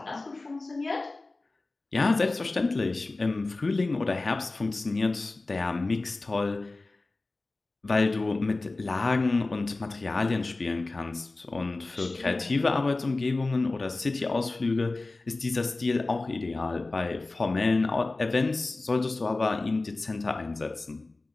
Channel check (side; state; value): right; quieter; 3.2 dB